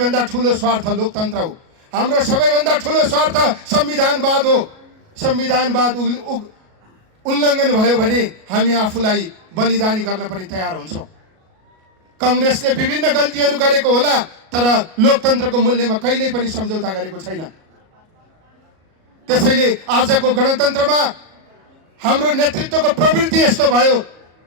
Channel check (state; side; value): late; left; 37 ms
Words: ठुलो स्वार्थ लोकतन्त्र हो। हाम्रो सबैभन्दा ठुलो स्वार्थ संविधानवाद हो। संविधानवाद उल्लङ्घन भयो भने हामी आफूलाई बलिदानी गर्न पनि तयार हुन्छौँ। कांग्रेसले विभिन्न गल्तीहरू गरेको होला, तर लोकतन्त्रको मूल्यमा कहिल्यै पनि सम्झौता गरेको छैन। त्यसैले आजको गणतन्त्रमा हाम्रो नेतृत्वको प्रवृत्ति यस्तो भयो,